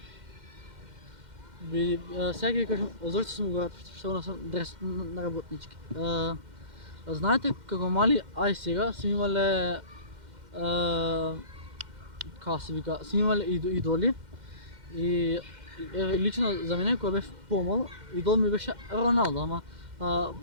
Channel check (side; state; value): left; late; 2.1 ms